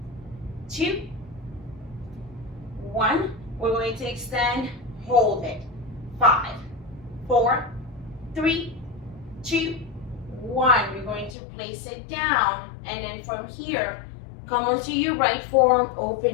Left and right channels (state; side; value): drops out; right; at 11.4 s